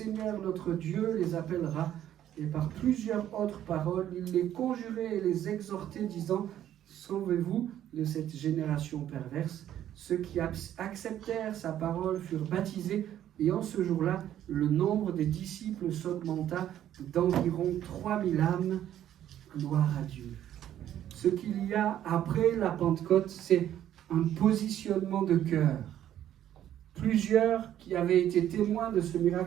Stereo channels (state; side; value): quieter; left; 11.4 dB